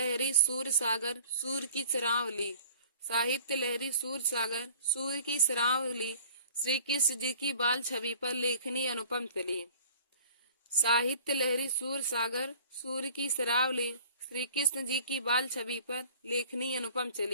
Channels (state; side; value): inverted; both; correlation -0.49